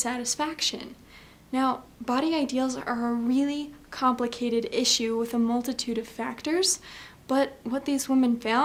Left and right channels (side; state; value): both; identical; correlation 1.00